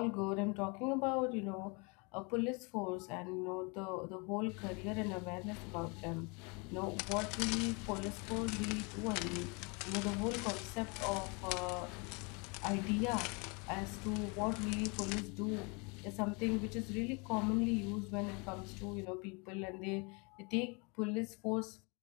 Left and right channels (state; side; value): quieter; right; 31.3 dB